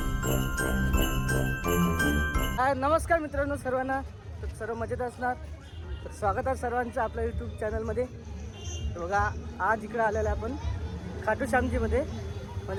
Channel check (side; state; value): both; identical; correlation 1.00